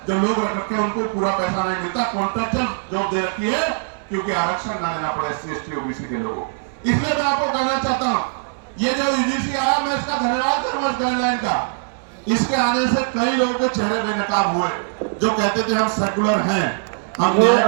जो लोग रख रखे उनको पूरा पैसा नहीं मिलता, कॉन्ट्रैक्चुअल जॉब दे रखी है, क्योंकि आरक्षण ना देना पड़े एससी एसटी ओबीसी के लोगों। इसलिए मैं आपको कहना चाहता हूं, ये जो यूजीसी आया मैं इसका धन्यवाद करूंगा गाइडलाइन का। इसके आने से कई लोगों के चेहरे बेनकाब हुए जो कहते थे हम सेकुलर हैं, हम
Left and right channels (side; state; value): left; silent; digital silence